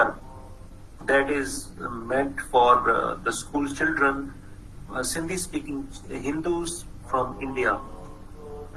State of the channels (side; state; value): both; identical; correlation 1.00